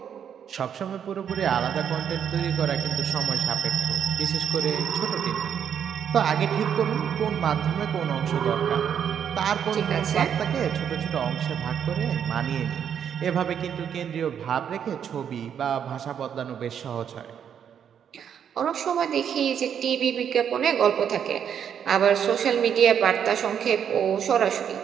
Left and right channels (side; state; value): left; quieter; 8.4 dB